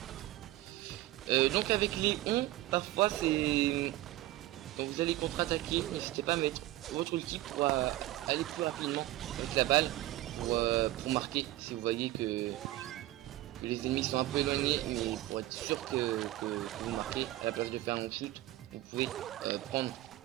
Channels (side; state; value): left; quieter; 16.2 dB